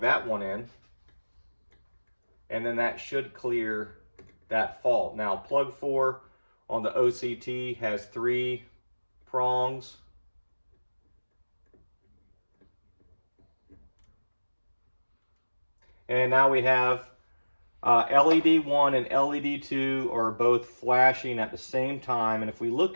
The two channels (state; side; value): inverted; both; correlation -1.00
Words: that one in, and then that should clear that fault. Now plug 4 on the OCT has 3 prongs. And now we have LED 1 and LED 2 are both flashing at the same time. And if we